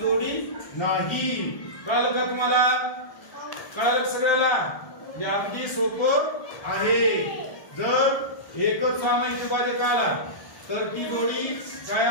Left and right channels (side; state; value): right; late; 1.3 ms